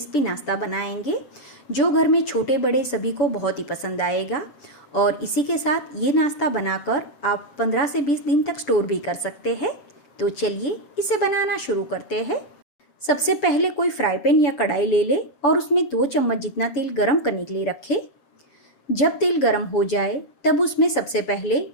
नाश्ता बनाएंगे जो घर में छोटे बड़े सभी को बहुत ही पसंद आएगा। और इसी के साथ ये नाश्ता बनाकर आप 15 से 20 दिन तक स्टोर भी कर सकते हैं। तो चलिए इसे बनाना शुरू करते हैं। सबसे पहले कोई फ्राई पैन या कढ़ाई ले ले और उसमें 2 चम्मच जितना तेल गरम करने के लिए रखें। जब तेल गरम हो जाए तब उसमें सबसे पहले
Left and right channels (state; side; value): late; right; 6.9 ms